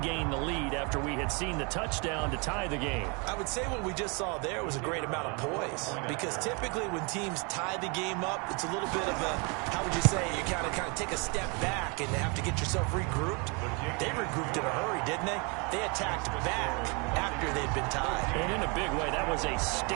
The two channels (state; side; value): quieter; left; 31.9 dB